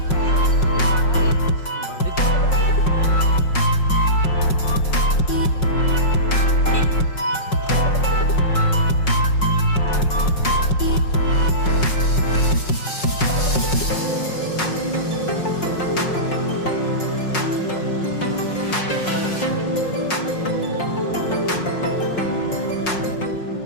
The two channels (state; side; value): late; right; 5.5 ms